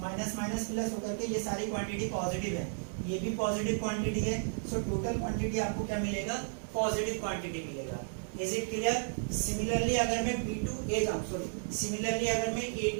माइनस माइनस प्लस होकर के ये सारी क्वांटिटी पॉजिटिव है, ये भी पॉजिटिव क्वांटिटी है। सो टोटल क्वांटिटी आपको क्या मिलेगा, पॉजिटिव क्वांटिटी मिलेगा। Is it clear? सिमिलरली अगर मैं बी टू ए जाऊँ, सॉरी सिमिलरली अगर मैं ए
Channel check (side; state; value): left; silent; digital silence